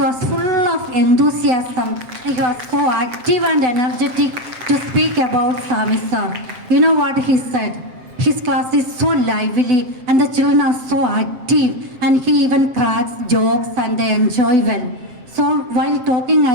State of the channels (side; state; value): left; late; 7.5 ms